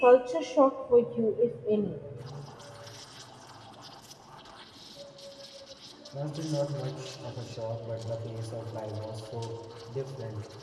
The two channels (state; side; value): identical; both; correlation 1.00